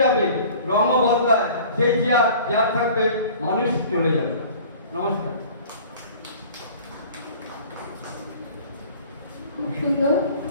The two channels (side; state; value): both; inverted; correlation -0.46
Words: যাবে, রঙও বদলায় সেই চেয়ার থাকবে, মানুষ চলে যাবে। নমস্কার। খুব সুন্দর।